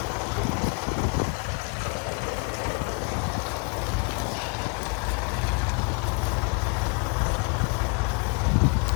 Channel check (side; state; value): right; quieter; 34.4 dB